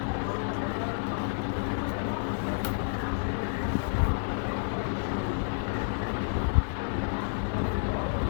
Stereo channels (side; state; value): right; silent; digital silence